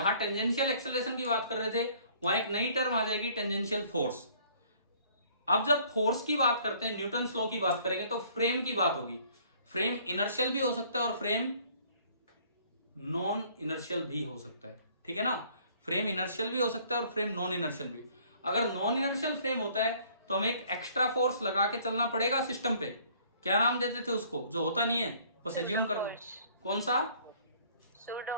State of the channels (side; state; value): both; inverted; correlation -0.58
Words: टेंजेंशियल एक्सेलरेशन की बात कर रहे थे, वहां एक नई टर्म आ जाएगी टेंजेंशियल फोर्स। अब जब फोर्स की बात करते हैं, न्यूटन लॉ की बात करेंगे, तो फ्रेम की बात होगी। फ्रेम इनर्शियल भी हो सकता है और फ्रेम नॉन इनर्शियल भी हो सकता है, ठीक है ना। फ्रेम इनर्शियल भी हो सकता है और फ्रेम नॉन इनर्शियल भी। अगर नॉन इनर्शियल फ्रेम होता है तो हमें एक एक्स्ट्रा फोर्स लगा के चलना पड़ेगा सिस्टम पे। क्या नाम देते थे उसको, जो होता नहीं है, बस एज्यूम करना है। कौन सा?